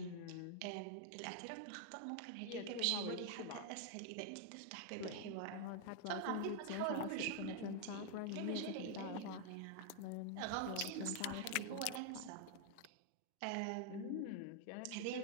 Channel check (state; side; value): different; both; correlation 0.00